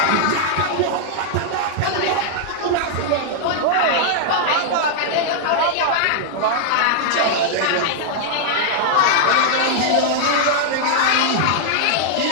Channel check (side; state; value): both; different; correlation -0.01